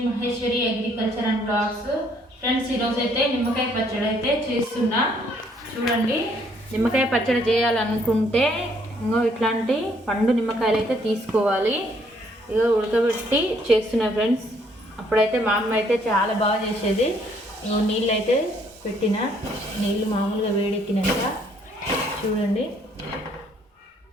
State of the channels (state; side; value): normal; both; correlation 0.66